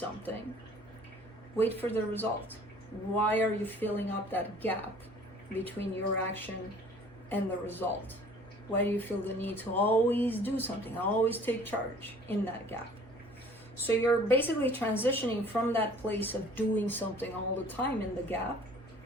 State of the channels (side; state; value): both; normal; correlation 0.52